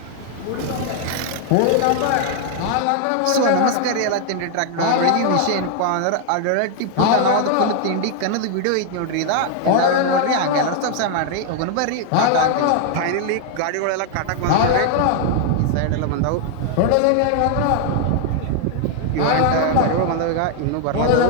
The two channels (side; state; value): both; different; correlation 0.00